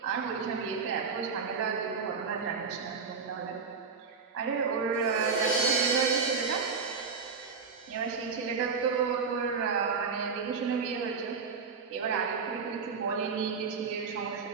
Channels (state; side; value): quieter; left; 5.3 dB